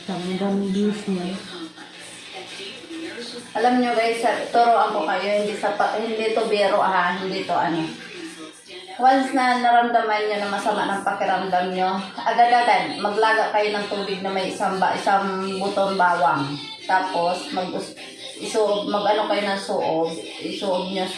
Daming views niya. Alam nyo guys, turuan ko kayo, hindi to biro ha, hindi to ano. Once na naramdaman nyo na masama ng pakiramdam nyo, agad-agad, maglaga kayo ng tubig na may isang butong bawang. Tapos, mag-ano kayo ng suob. Isuob nyo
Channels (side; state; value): both; identical; correlation 1.00